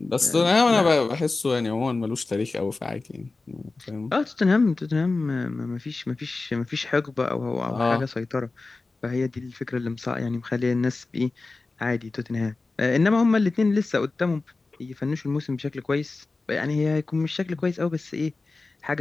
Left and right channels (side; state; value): right; quieter; 3.6 dB